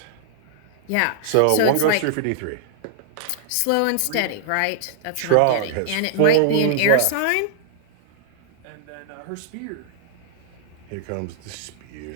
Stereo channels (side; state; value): both; different; correlation -0.01